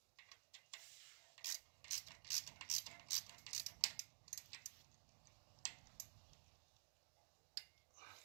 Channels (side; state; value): left; silent; digital silence